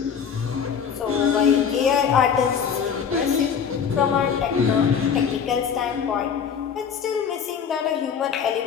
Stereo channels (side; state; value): right; quieter; 7.2 dB